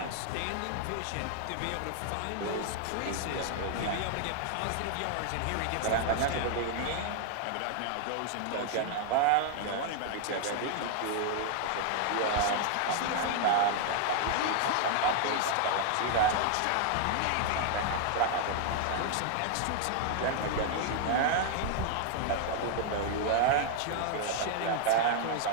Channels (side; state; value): both; different; correlation 0.00